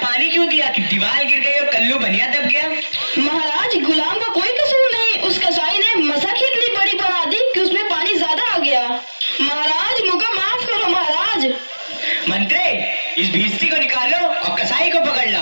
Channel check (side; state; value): both; inverted; correlation -1.00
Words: क्यों दिया कि दीवार गिर गई और कल्लू बनिया दब गया? महाराज, गुलाम का कोई कसूर नहीं, उस कसाई ने मसक ही इतनी बड़ी बना दी कि उसमें पानी ज्यादा आ गया। महाराज, मुझे माफ करो महाराज। मंत्री, इस भिस्ती को निकालो और कसाई को पकड़